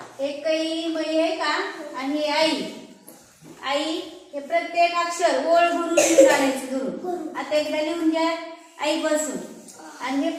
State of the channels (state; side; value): identical; both; correlation 1.00